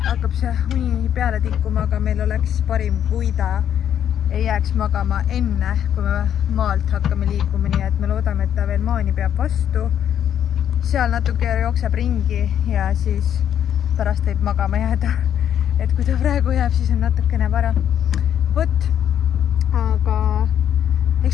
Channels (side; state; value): right; quieter; 9.7 dB